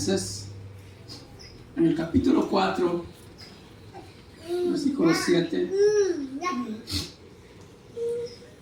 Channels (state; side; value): identical; both; correlation 1.00